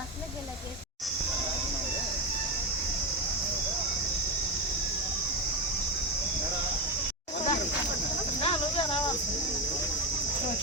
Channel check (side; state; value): both; normal; correlation 0.14